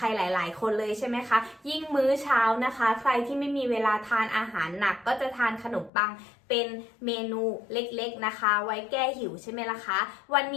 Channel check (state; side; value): drops out; right; at 5.9 s